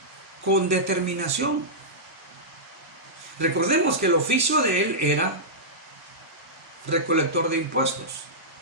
con determinación. Recordemos que el oficio de él era recolector de impuestos.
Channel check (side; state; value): both; normal; correlation -0.13